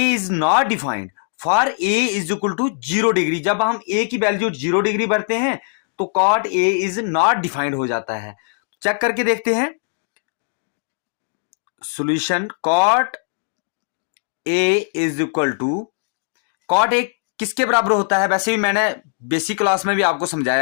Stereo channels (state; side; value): silent; right; digital silence